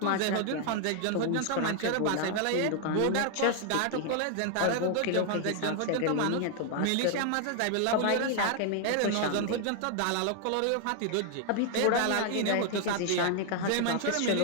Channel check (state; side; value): different; both; correlation 0.00